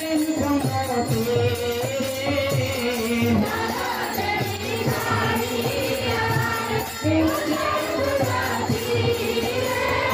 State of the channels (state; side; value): identical; both; correlation 1.00